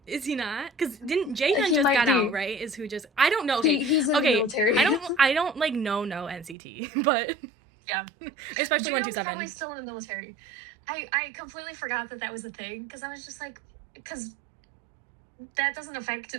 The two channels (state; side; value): drops out; left; at 6.6 s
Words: Is he not? Because didn't Jaehyun just got out, right? Is who just... I don't know. Okay. He's in the military. I don't like, no NCT, but... Yeah. Especially 127. Probably still in the military. I completely forgot that was a thing, because I was just like... Because that doesn't affect